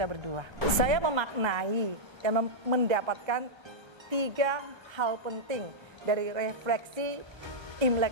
berdua. Saya memaknai dan mendapatkan 3 hal penting dari refleksi Imlek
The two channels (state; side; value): late; left; 1.3 ms